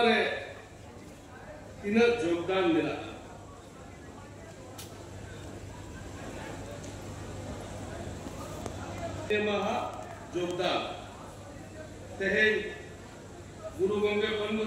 re Tina Jogdan mila Maha Jogdan Tehen Guru Gongge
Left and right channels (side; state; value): both; identical; correlation 1.00